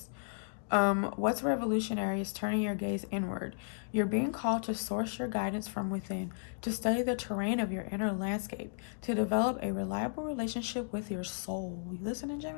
What's revolutionary is turning your gaze inward. You're being called to source your guidance from within, to study the terrain of your inner landscape, to develop a reliable relationship with your soul. You listening,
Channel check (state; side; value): silent; right; digital silence